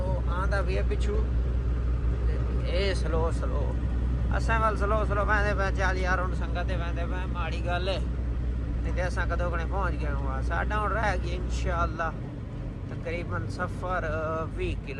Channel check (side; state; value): both; identical; correlation 1.00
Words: आंदा भी है पिछू ये स्लो स्लो असा वाल स्लो स्लो वैंदे पे। चल यार हूँ संगत वैंदे पे माड़ी गल है नहीं तो असा कदों कने पहुँच गए हुआ। साडा हूँ रह गया इंशाअल्लाह तकरीबन सफ़र 20